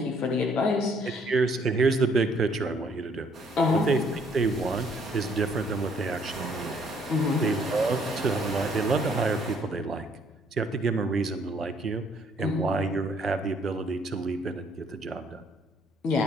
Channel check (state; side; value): normal; both; correlation 0.64